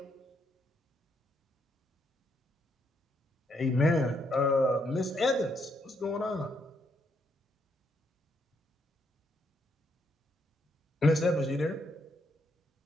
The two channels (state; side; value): normal; both; correlation 0.75